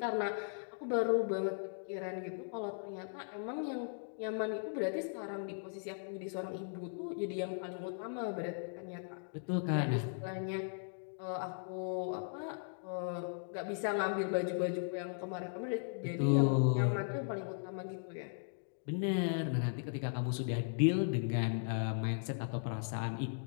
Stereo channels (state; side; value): silent; right; digital silence